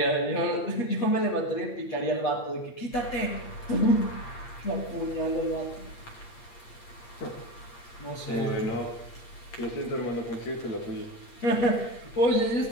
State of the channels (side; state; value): right; late; 8.6 ms